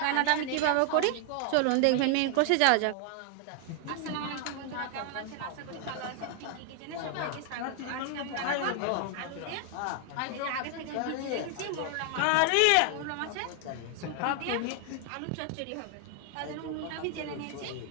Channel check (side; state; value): both; different; correlation 0.00